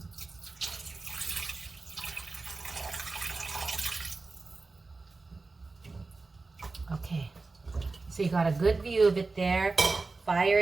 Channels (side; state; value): left; quieter; 3.8 dB